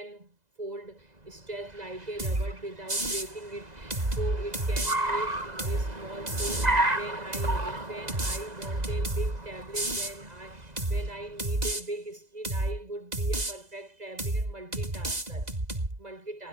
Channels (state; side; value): late; left; 2.0 ms